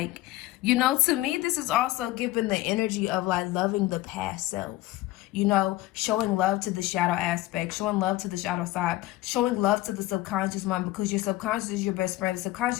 you know, to me, this is also giving the energy of like loving the past self. You know, showing love to the shadow aspect, showing love to the shadow side, showing love to the subconscious mind, because your subconscious is your best friend. The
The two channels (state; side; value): quieter; right; 17.2 dB